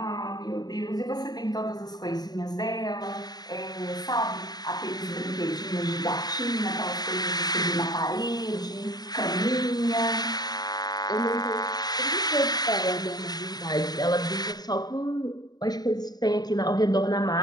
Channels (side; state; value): right; late; 0.19 ms